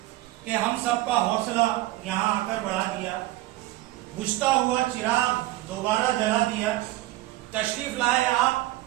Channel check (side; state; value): left; quieter; 17.1 dB